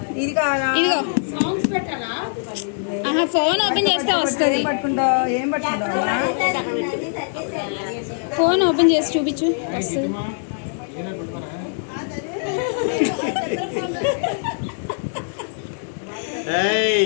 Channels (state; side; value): silent; right; 56 dB below the other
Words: ఇదిగో ఫోన్ ఓపెన్ చేస్తే వస్తుంది. ఫోన్ ఓపెన్ చేసి చూపించు వస్తుంది.